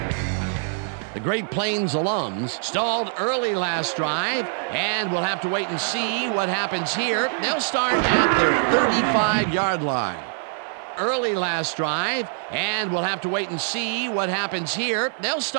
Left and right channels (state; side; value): silent; left; 63 dB below the other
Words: The Great Plains alums stalled early last drive, and we'll have to wait and see what happens here. They'll start at their 35-yard line. Early last drive, and we'll have to wait and see what happens here. They'll